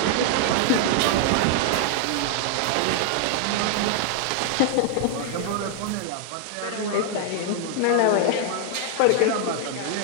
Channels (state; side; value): different; both; correlation 0.00